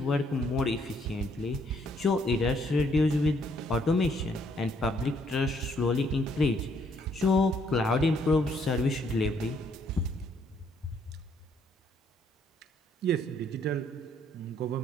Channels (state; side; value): normal; both; correlation 0.68